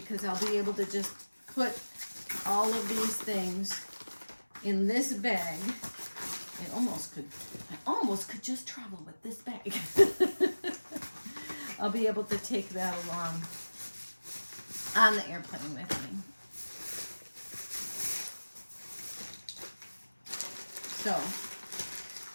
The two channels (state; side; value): inverted; both; correlation -1.00